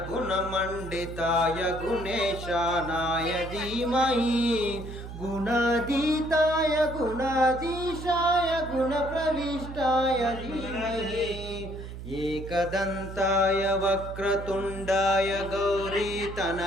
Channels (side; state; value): right; noise; hum, 10 dB below the sound